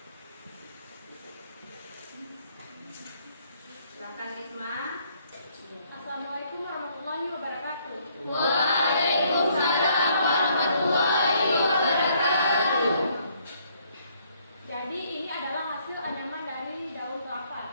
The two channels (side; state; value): both; inverted; correlation -0.67